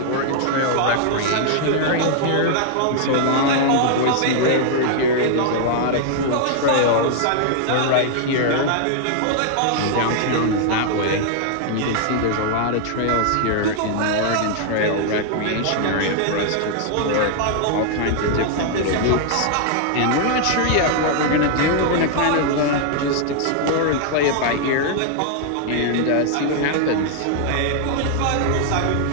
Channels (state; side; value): different; both; correlation 0.00